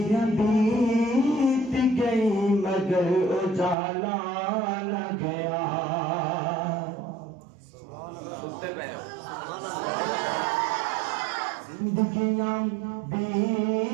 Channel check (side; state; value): left; drops out; at 3.8 s